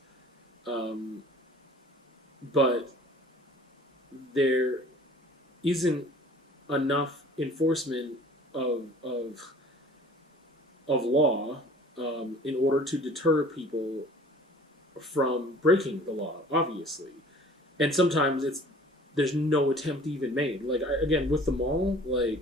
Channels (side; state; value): both; normal; correlation 0.48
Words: But there isn't enough enforcement of law in order to deter people from breaking the law, obviously. And sometimes there's no attempt even made. Like, again, with the mall,